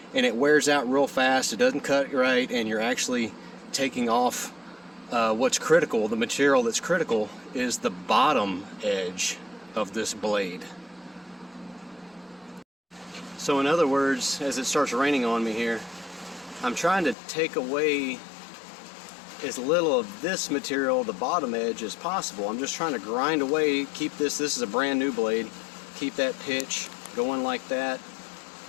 and it wears out real fast. It doesn't cut right, and you're actually taking off what's critical. The material that's critical is the bottom edge of this blade. So in other words, as it starts raining on me here, I'm trying to take away as little of this material, the bottom edge, as possible. I'm just trying to grind away, keep this is a brand new blade, keep that pitch going like that,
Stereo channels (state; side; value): drops out; right; at 17.2 s